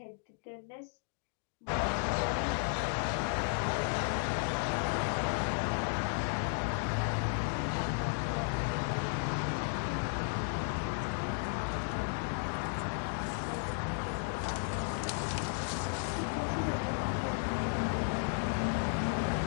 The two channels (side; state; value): right; silent; 55 dB below the other